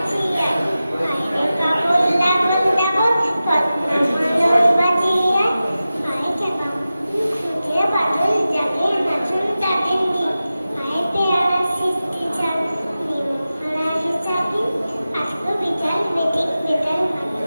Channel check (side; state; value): both; inverted; correlation -0.94